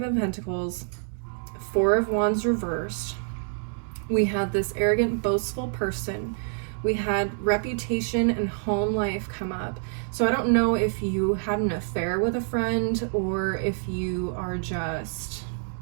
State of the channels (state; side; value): silent; left; digital silence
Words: of Pentacles, 4 of Wands reversed. We had this arrogant, boastful person. We had reputation and home life come up. So I don't know if you had an affair with a friend or if you are just,